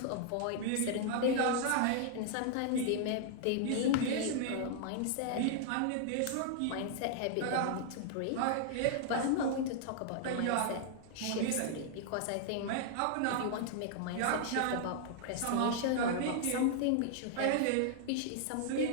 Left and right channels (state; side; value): different; both; correlation -0.01